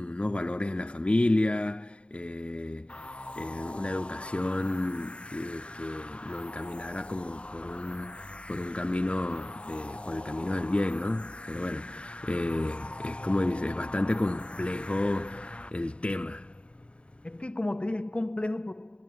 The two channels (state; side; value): late; right; 0.057 ms